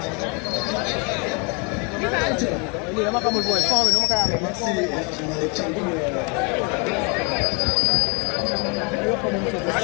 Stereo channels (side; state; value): right; quieter; 33.0 dB